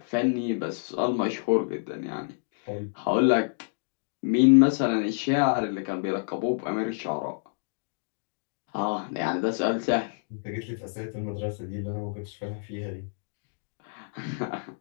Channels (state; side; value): silent; right; digital silence